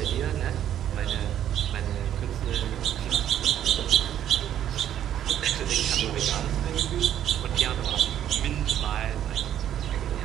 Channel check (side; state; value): left; quieter; 10.8 dB